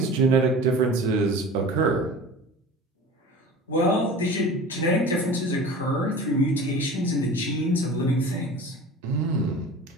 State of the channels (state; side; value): normal; both; correlation 0.38